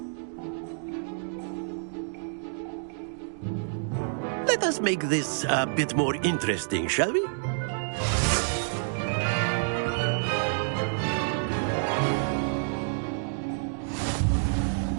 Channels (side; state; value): left; silent; digital silence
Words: Let us make this a bit more interesting, shall we?